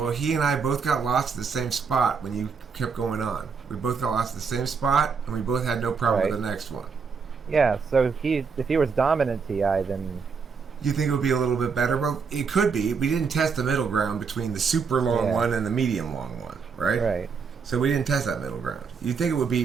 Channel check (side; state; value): left; quieter; 5.6 dB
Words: he and I both got lost at the same spot when you kept going on. We both got lost at the same spot, and we both had no problem Right. with the next one. Yeah. So if he was dominant TI, then You think it would be a little bit better? Well, it could be. We didn't test the middle ground between the super long Yeah. one and the medium long one, right? right. So we didn't test that middle ground. You'd think it would be